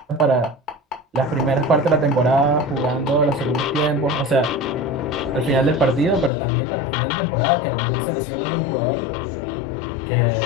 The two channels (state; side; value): drops out; right; at 6.3 s